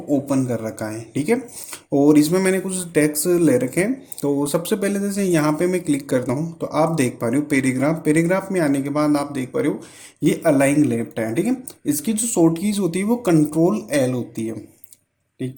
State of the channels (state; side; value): identical; both; correlation 1.00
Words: ओपन कर रखा है। ठीक है। और इसमें मैंने कुछ टेक्स्ट ले रखे हैं। तो सबसे पहले जैसे यहाँ पे मैं क्लिक करता हूँ तो आप देख पा रहे हो पैराग्राफ। पैराग्राफ में आने के बाद आप देख पा रहे हो ये अलाइन लेफ्ट है। ठीक है। इसकी जो शॉर्ट कीज होती है वो कंट्रोल एल होती है।